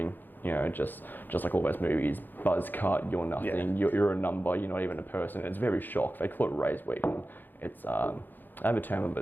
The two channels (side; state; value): right; late; 0.089 ms